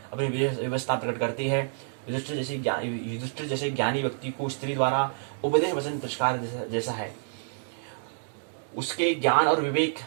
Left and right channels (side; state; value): left; silent; digital silence